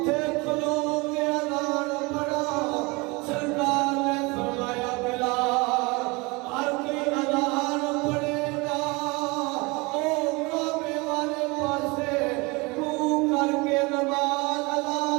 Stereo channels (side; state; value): left; quieter; 26.2 dB